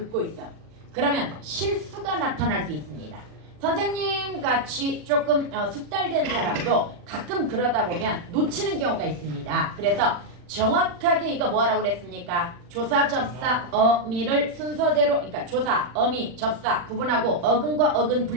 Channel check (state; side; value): late; left; 40 ms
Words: 있어. 그러면 실수가 나타날 수 있습니다. 선생님 같이 조금 숙달된 사람도 가끔 그러다 보면 놓치는 경우가 있습니다. 그래서 정확하게 이거 뭐 하라고 그랬습니까? 조사, 접사, 어미를 순서대로 그러니까 조사, 어미, 접사 구분하고 어근과 어근